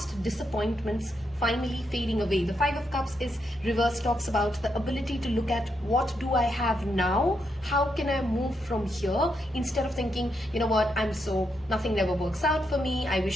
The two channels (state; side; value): normal; both; correlation 0.81